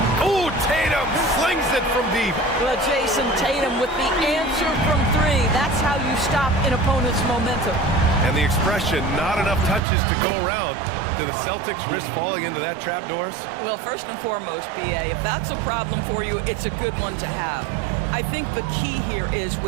Oh, Tatum slings it from deep. Well, Jason Tatum with the answer from 3. That's how you stop an opponent's momentum. And the expression, not enough touches to go around. Do the Celtics risk falling into that trap, Doris? Well, first and foremost, BA, if that's a problem for you, it's a good one to have. I think the key here is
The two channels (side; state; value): left; drops out; at 9.8 s